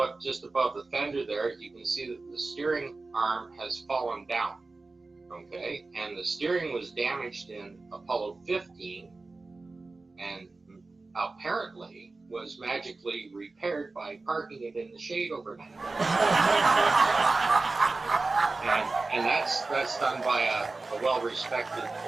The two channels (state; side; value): quieter; left; 3.5 dB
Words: just above the fender there, you can see that the steering arm has fallen down, okay? And the steering was damaged in Apollo 15 and apparently was magically repaired by parking it in the shade overnight. and that's done by a well-respected